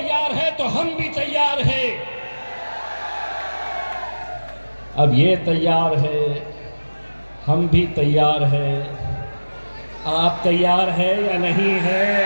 है तो हम भी तैयार हैं। अब ये तैयार है, हम भी तैयार हैं, आप तैयार है या नहीं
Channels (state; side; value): inverted; both; correlation -1.00